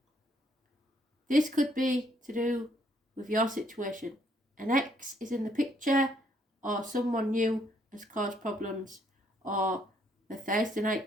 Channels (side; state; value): both; normal; correlation 0.69